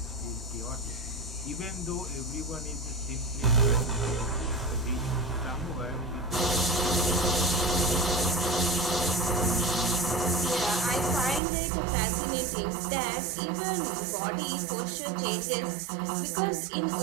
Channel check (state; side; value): drops out; left; at 11.4 s